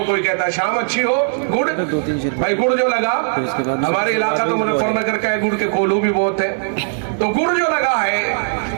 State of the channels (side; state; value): left; silent; digital silence